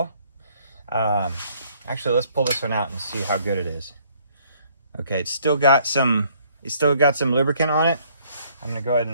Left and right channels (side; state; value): both; inverted; correlation -0.63